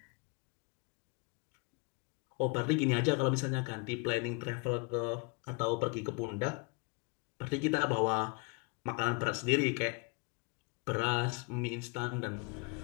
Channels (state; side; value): quieter; right; 31.1 dB